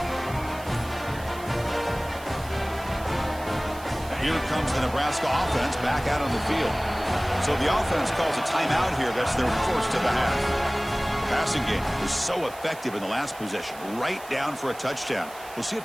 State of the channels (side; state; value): right; noise; hiss, 18 dB below the sound